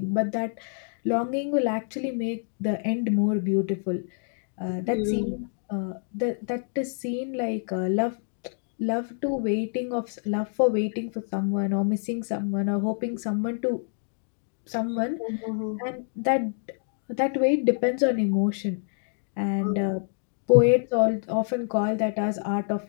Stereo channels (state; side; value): silent; right; digital silence